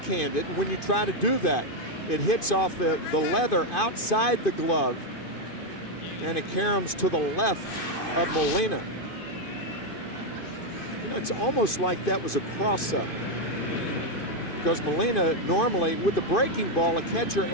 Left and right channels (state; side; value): late; right; 2.5 ms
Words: it. When you try to do that, it hits off the leather outside the glove, and it caroms to the left of Molina. You know, it's almost like that was a cross-up, because Molina normally with the breaking ball, a catcher